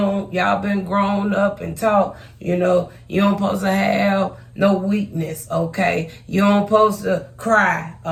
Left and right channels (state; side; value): identical; both; correlation 1.00